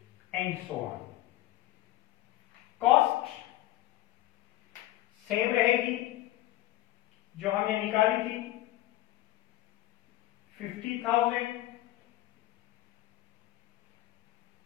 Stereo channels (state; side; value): quieter; right; 15.6 dB